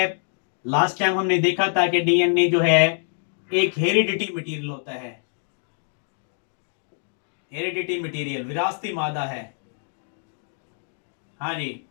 लास्ट टाइम हमने देखा था कि डीएनए जो है एक हेरिडिटी मटेरियल होता है। हेरिडिटी मटेरियल विरासती मादा है। हाँ जी।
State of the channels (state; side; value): silent; right; digital silence